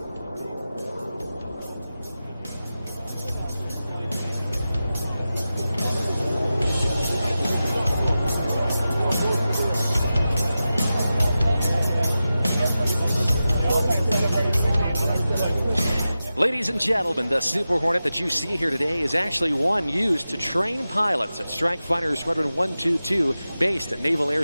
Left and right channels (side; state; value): both; inverted; correlation -0.93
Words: Ladies and gentlemen, the Super Hornet that you see here today is actually one used to train pilots at Strike Fighter Squadron 122, based at Naval Air